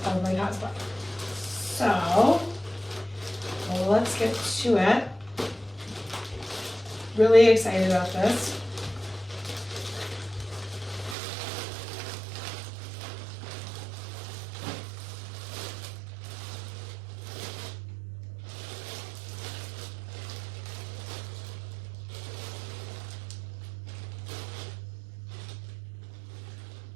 of my cosplay. So let's get to it. Really excited about this.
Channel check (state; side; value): drops out; left; at 11.2 s